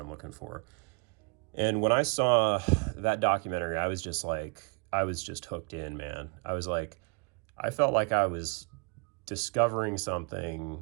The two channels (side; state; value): left; quieter; 31.9 dB